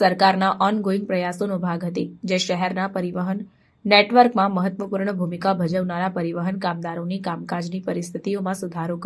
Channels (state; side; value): identical; both; correlation 1.00